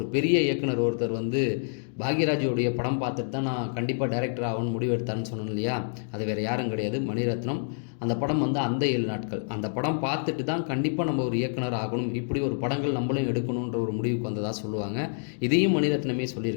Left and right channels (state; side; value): silent; right; digital silence